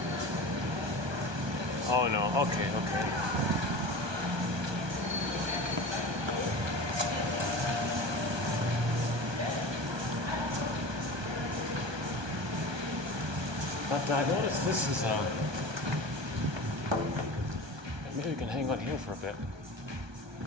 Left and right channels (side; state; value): left; late; 1.2 ms